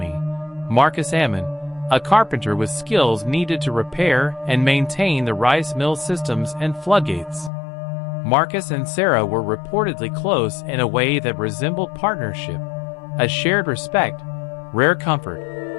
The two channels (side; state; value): right; drops out; at 7.5 s